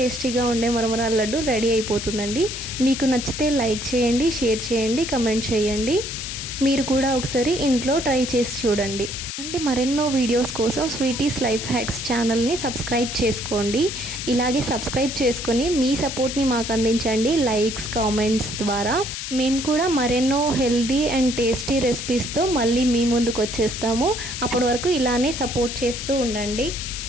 ఉండే మరమరాల లడ్డు రెడీ అయిపోతుందండి. మీకు నచ్చితే లైక్ చేయండి, షేర్ చేయండి, కమెంట్ చేయండి. మీరు కూడా ఒకసారి ఇంట్లో ట్రై చేసి చూడండి. అంటే మరెన్నో వీడియోస్ కోసం స్వీటీస్ లైఫ్ హ్యాక్స్ ఛానల్ని సబ్స్క్రైబ్ చేసుకోండి. ఇలాగే సబ్స్క్రైబ్ చేసుకొని మీ సపోర్ట్ని మాకు అందించండి లైక్స్, కామెంట్స్ ద్వారా. మేము కూడా మరెన్నో హెల్దీ అండ్ టేస్టీ రెసిపీస్తో మళ్ళీ మీ ముందుకు వచ్చేస్తాము. అప్పటి వరకు ఇలానే సపోర్ట్ చేస్తూ ఉండండి.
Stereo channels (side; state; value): left; noise; hiss, 6 dB below the sound